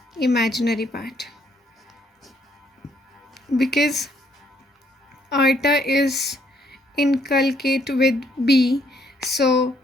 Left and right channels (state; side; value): normal; both; correlation 0.69